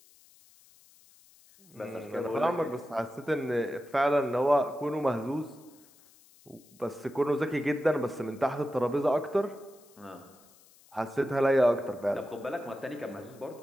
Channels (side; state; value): left; noise; hiss, 27 dB below the sound